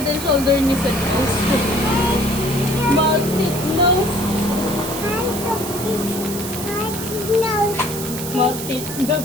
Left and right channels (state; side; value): noise; right; hiss, 8 dB below the sound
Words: and shoulder ni Sir Nose. Maltit nose. Maltit